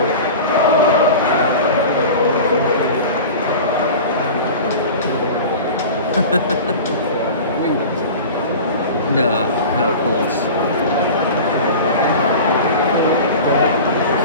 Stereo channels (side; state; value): both; inverted; correlation -0.34